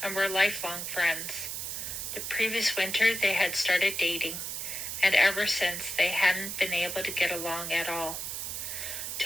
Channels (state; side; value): noise; right; hiss, 5 dB below the sound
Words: and were lifelong friends. The previous winter they had started dating, and ever since they hadn't been able to get along at all.